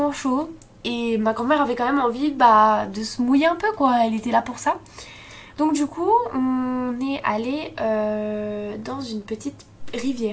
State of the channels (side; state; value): both; identical; correlation 1.00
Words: chaud. Et ma grand-mère avait quand même envie de se mouiller un peu, quoi. Elle était là pour ça. Donc du coup, on est allé dans une petite